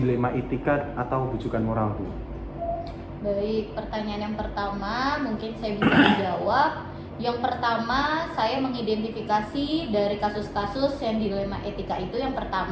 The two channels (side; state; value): both; identical; correlation 1.00